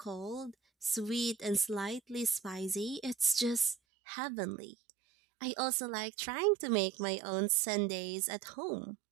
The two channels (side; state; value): left; drops out; at 3.8 s